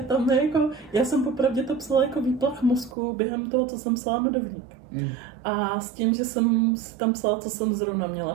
je jako... Já jsem popravdě to psala jako výplach mozku během toho, co jsem psala Medovník. A s tím, že jsem tam psala, co jsem zrovna měla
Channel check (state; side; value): drops out; left; at 3.0 s